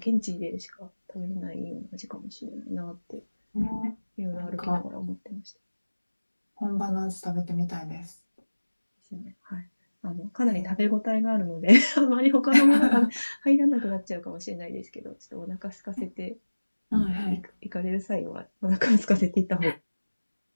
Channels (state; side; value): inverted; both; correlation -1.00